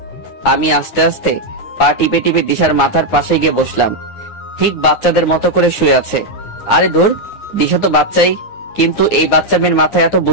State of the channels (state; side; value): late; right; 9.7 ms